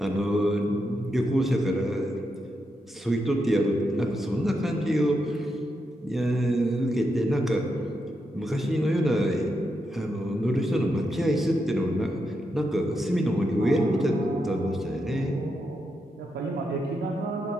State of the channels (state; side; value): normal; both; correlation 0.83